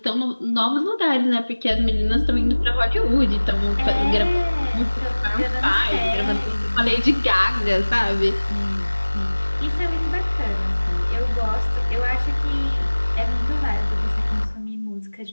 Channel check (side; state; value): both; inverted; correlation -1.00